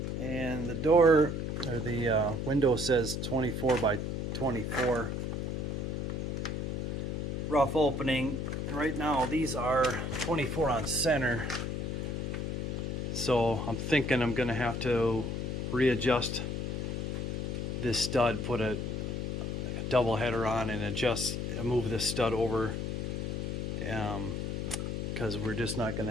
And the door, or the window says 24 by 24 rough opening. And right now these are 24 on center. So I'm thinking I'm gonna have to readjust this stud, put a double header on and move this stud over, because we're just not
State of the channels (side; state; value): left; noise; hum, 2 dB below the sound